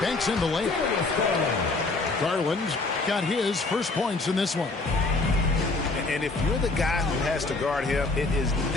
banks in the layup. Garland's got his first points in this one. And if you're the guy who has to guard him, it is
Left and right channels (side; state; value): right; quieter; 3.4 dB